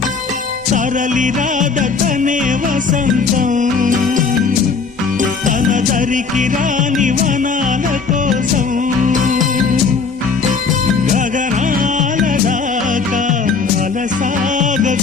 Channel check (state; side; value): quieter; right; 5.0 dB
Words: తరలి రాద తనే వసంతం తన దరికి రాని వనాల కోసం గగనాల దాకా